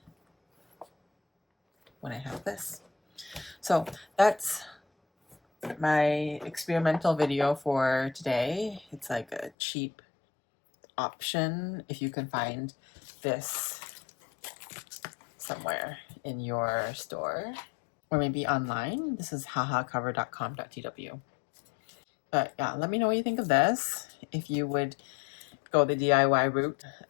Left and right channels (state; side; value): drops out; right; at 9.5 s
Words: when I have this. So that's my experimental video for today. It's like a cheap option if you can find this somewhere in your store or maybe online. This is hahacover.com.tw. But yeah, let me know what you think of this. If you would go the DIY route,